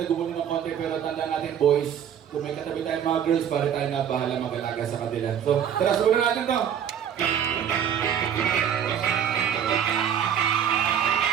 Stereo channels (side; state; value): left; quieter; 8.9 dB